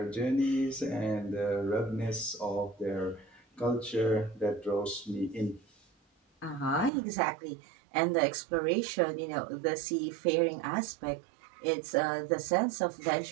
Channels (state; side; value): drops out; left; at 6.9 s